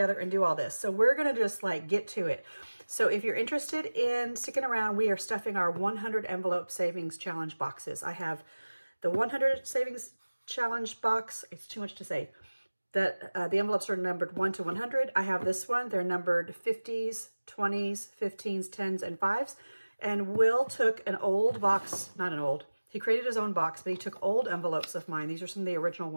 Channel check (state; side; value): inverted; both; correlation -1.00